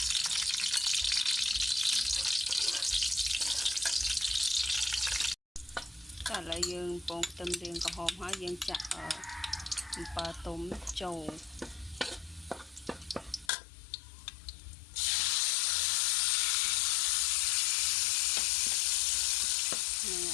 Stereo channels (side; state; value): right; drops out; at 13.5 s